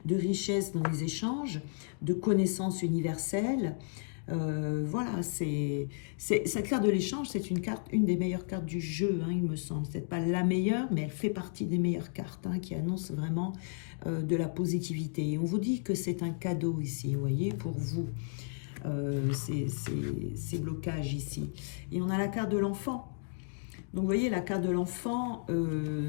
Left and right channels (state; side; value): silent; right; digital silence